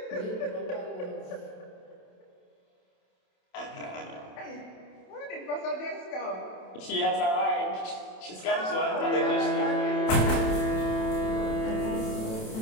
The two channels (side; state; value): right; late; 27 ms